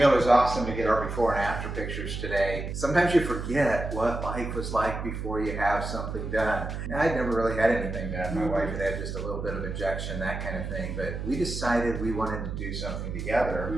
it was awesome to get our before and after pictures today. Sometimes you forget what life was like before you have something done. I'd never really had anything done. My wife had just a little bit of injection, that kind of thing. But we decided we wanted to do something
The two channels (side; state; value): right; noise; hum, 5 dB below the sound